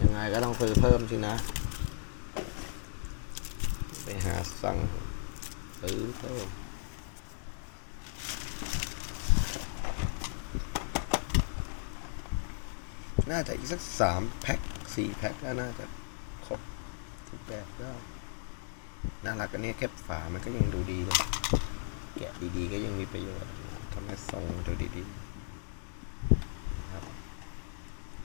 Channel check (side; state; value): right; silent; digital silence